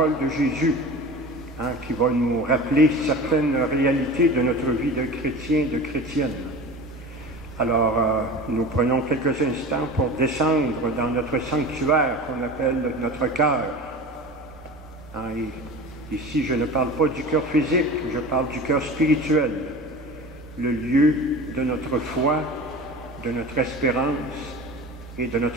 de Jésus qui va nous rappeler certaines réalités de notre vie de chrétien, de chrétienne. Alors, nous prenons quelques instants pour descendre dans notre sanctuaire qu'on appelle notre cœur. Ici, je ne parle pas du cœur physique, je parle du cœur spirituel, le lieu de notre foi, de notre espérance et de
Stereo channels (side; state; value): both; normal; correlation 0.34